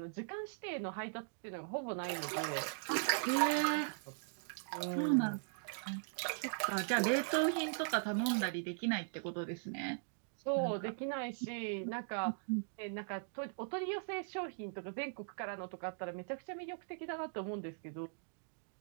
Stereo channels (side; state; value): left; silent; digital silence